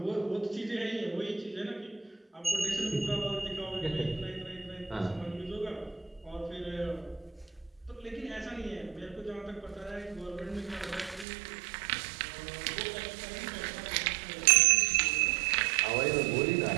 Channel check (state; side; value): drops out; left; at 11.2 s